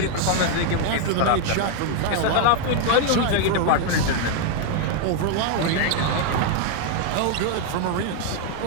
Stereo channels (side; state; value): both; different; correlation 0.00